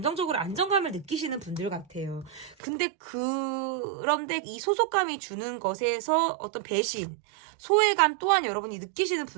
안정감을 느끼시는 분들 같아요. 근데 그런데 이 소속감이 주는 것에서 어떤 배신, 소외감 또한 여러분이 느끼시는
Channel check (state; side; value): drops out; left; at 2.6 s